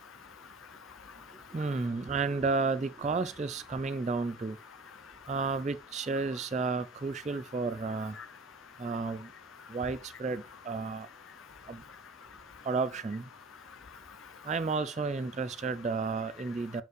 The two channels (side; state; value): left; quieter; 3.5 dB